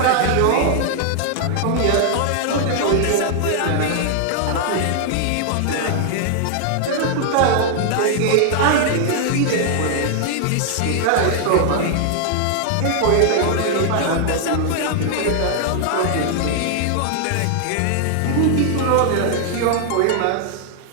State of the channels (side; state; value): both; different; correlation 0.00